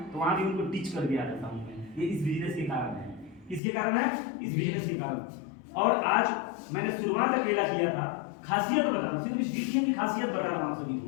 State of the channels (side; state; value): right; drops out; at 3.6 s